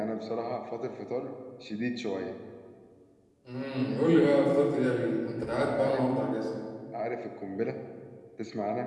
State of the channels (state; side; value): identical; both; correlation 1.00